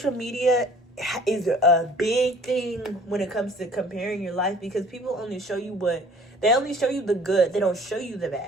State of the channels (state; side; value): normal; both; correlation 0.52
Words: media is a big thing when it comes to comparing your life, because people only show you they only show you the good. They don't show you the